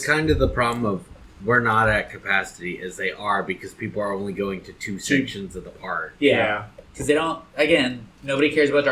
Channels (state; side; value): identical; both; correlation 1.00